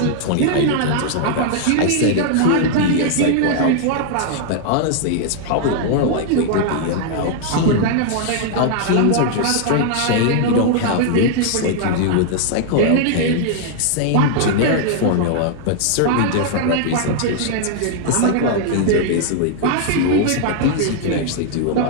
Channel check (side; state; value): both; different; correlation -0.01